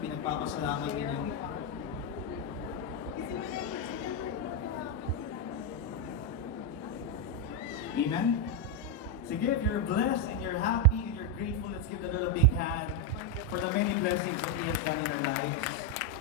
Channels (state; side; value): normal; both; correlation 0.04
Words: ninyo? Amen? Sige, if you're blessed and you're happy and you're grateful, let's give the Lord a big hand for the many blessings that He has done in our lives.